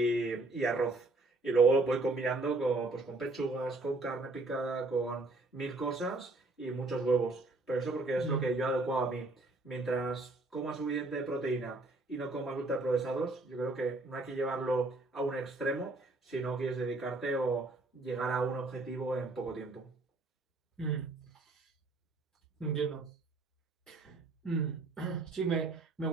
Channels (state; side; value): quieter; left; 3.1 dB